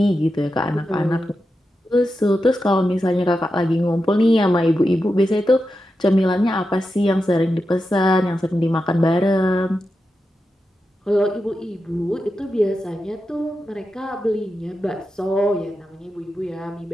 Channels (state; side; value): normal; both; correlation 0.89